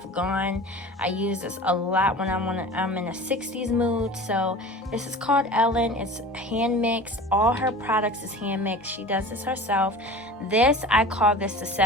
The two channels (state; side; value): normal; both; correlation 0.38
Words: gone. I use this a lot when I'm in a 60s mood. So this is called Ellen. It's hand mixed. All her products is hand mixed. She does this herself. This, I call this the